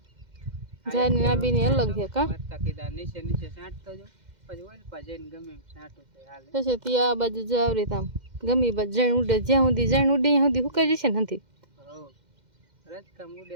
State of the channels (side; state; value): left; late; 2.1 ms